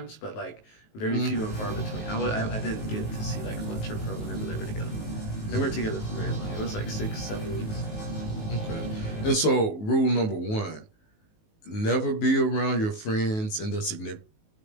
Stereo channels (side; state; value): right; late; 19 ms